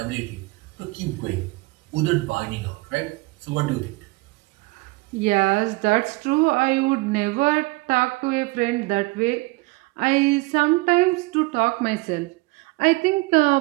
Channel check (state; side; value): quieter; left; 24.3 dB